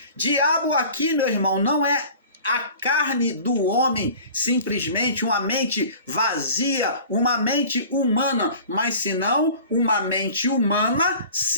Diabo aqui, meu irmão, não é a carne do homem, simplesmente uma mente vazia, uma mente humana, mas senão uma mente humana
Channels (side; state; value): both; inverted; correlation -0.44